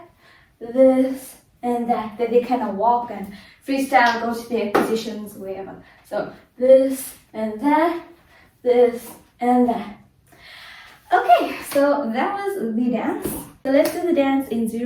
this and that. Then they kind of walk and freestyle, go to their positions, wherever. So this and that, this and that. Okay, so that was the dance. So let's do the dance in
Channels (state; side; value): identical; both; correlation 1.00